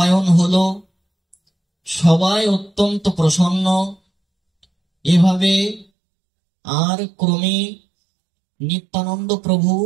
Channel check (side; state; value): left; drops out; at 5.9 s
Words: হলো, সবাই অত্যন্ত প্রসন্ন। এভাবে আর ক্রমে নিত্যানন্দ প্রভু